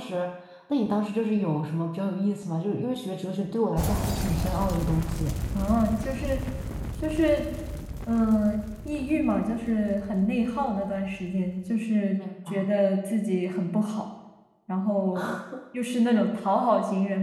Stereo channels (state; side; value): identical; both; correlation 1.00